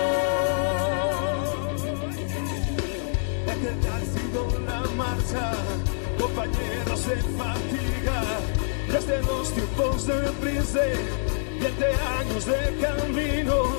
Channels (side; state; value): right; silent; digital silence